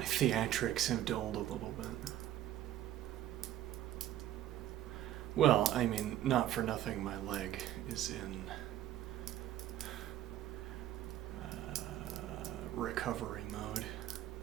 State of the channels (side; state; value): left; quieter; 12.3 dB